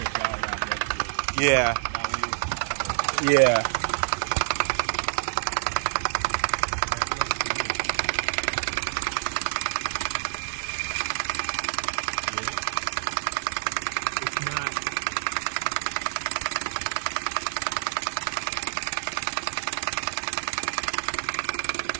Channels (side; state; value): left; silent; digital silence